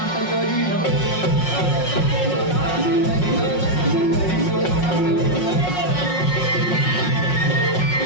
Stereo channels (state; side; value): late; right; 5.5 ms